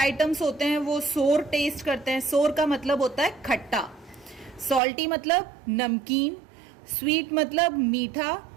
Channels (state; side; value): drops out; left; at 4.8 s